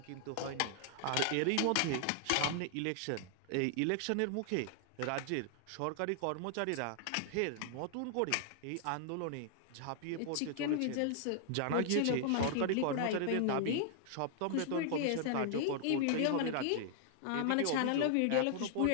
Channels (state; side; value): different; both; correlation 0.00